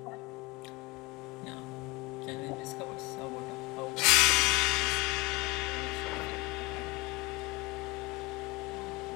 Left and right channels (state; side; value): quieter; right; 24.0 dB